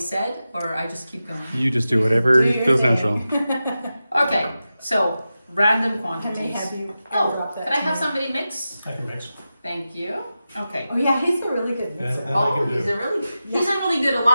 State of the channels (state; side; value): inverted; both; correlation -0.92